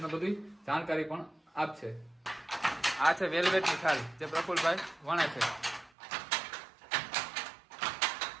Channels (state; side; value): drops out; left; at 5.9 s